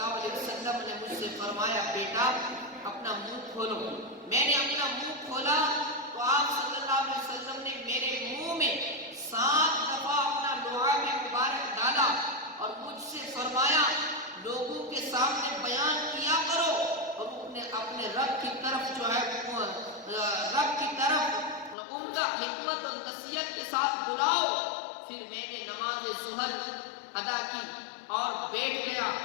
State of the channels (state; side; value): drops out; right; at 21.8 s